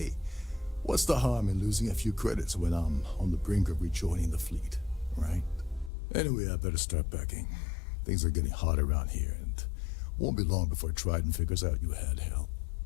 what's the harm in losing a few credits when I'm on the brink of rejoining the fleet, right? Anyway, I better start packing. Things are getting hot around here, and won't be long before Trident figures out you had help.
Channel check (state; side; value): drops out; right; at 5.9 s